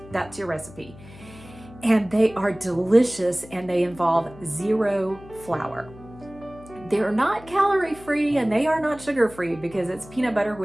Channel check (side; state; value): left; noise; hum, 20 dB below the sound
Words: That's your recipe. And they are delicious, and they involve 0 flour. They're not calorie free, and they are not sugar free, because it's peanut butter,